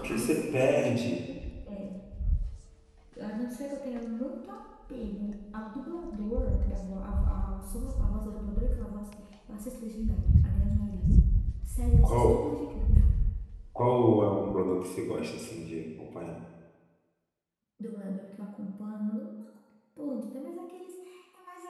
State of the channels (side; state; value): both; identical; correlation 1.00